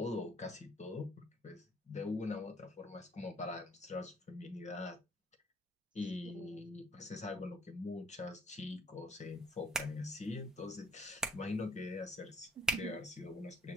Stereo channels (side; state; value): both; normal; correlation 0.63